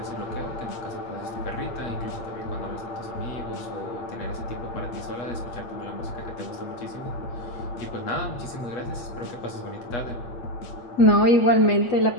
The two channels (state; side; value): late; right; 8.2 ms